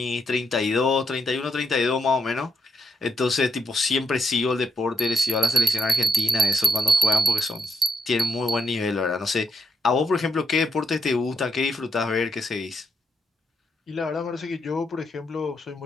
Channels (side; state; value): both; normal; correlation 0.79